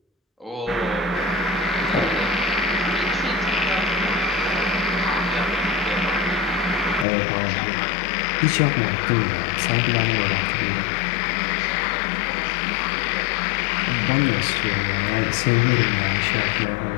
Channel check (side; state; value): right; drops out; at 7.1 s